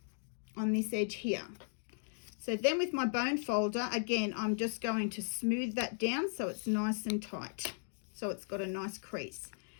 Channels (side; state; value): right; silent; digital silence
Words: on this edge here. So then with my bone folder, again, I'm just going to smooth that down so it's nice and tight. So it's got a nice crease.